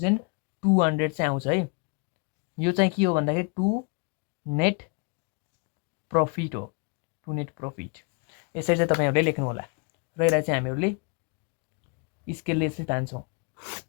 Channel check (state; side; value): quieter; right; 33.6 dB